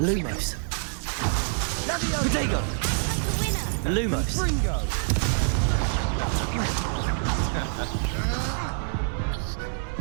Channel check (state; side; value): silent; left; digital silence